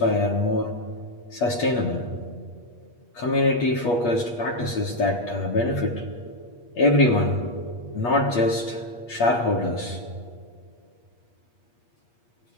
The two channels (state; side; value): late; right; 8.4 ms